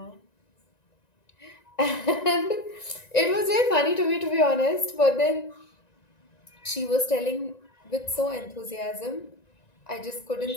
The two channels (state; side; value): late; right; 1.9 ms